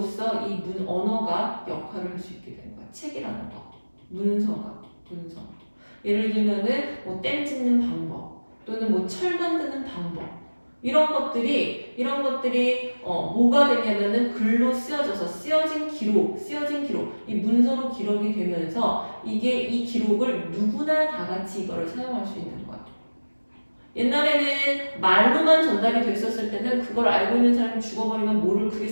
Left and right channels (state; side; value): inverted; both; correlation -1.00